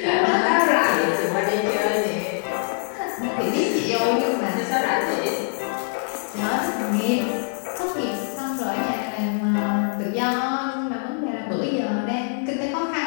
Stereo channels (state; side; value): silent; right; 55 dB below the other